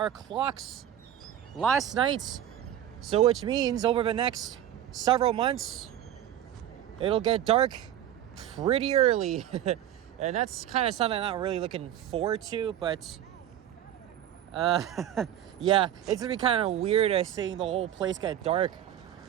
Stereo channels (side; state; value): left; quieter; 11.2 dB